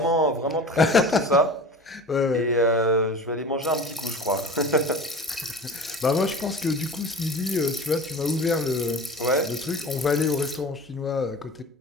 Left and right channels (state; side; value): normal; both; correlation 0.37